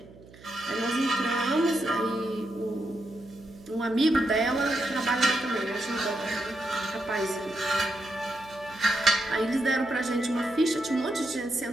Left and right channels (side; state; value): right; noise; hum, 21 dB below the sound